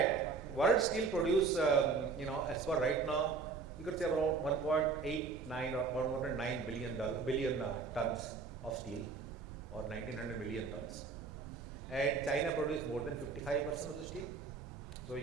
world steel produce, as per right now, you can say about 1.89 or 1.9 billion tons of steel, or 1900 million tons. And China produced more than 55% of the steel. So you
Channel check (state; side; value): quieter; left; 4.7 dB